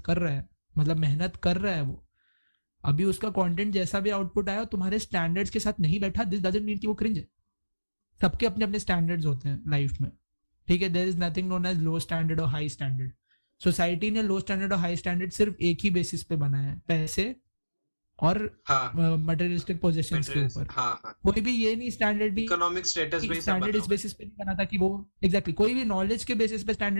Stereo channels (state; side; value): inverted; both; correlation -1.00